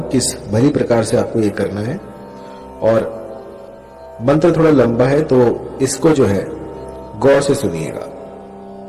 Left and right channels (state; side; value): identical; both; correlation 1.00